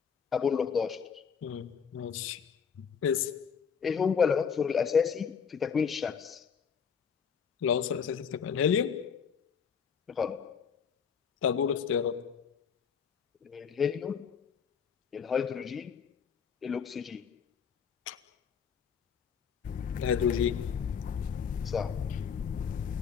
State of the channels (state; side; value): quieter; right; 6.8 dB